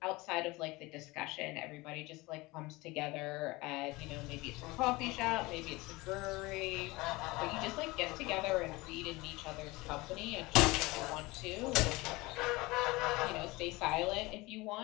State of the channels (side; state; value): right; quieter; 22.1 dB